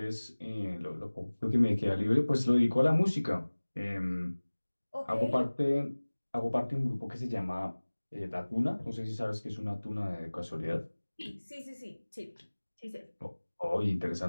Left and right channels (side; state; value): both; inverted; correlation -1.00